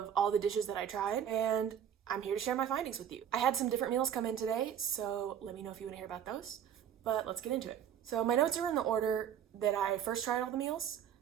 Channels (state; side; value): quieter; left; 9.2 dB